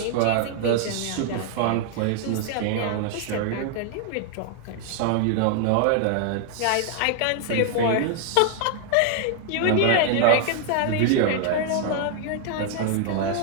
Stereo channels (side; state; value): both; different; correlation 0.00